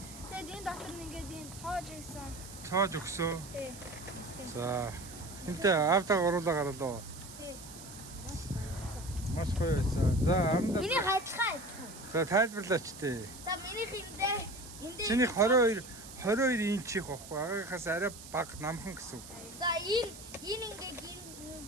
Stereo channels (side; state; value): right; noise; hiss, 15 dB below the sound